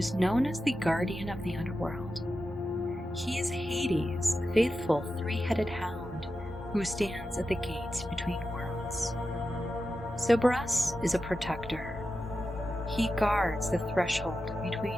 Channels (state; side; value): normal; both; correlation 0.91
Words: known as the guardian of the underworld. He is Hades, the faithful three-headed hound who stands at the gates between worlds. Cerberus is a protector. He guards the threshold